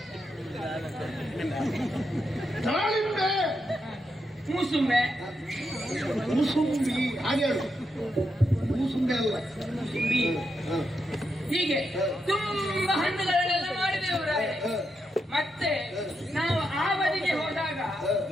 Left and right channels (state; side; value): normal; both; correlation 0.83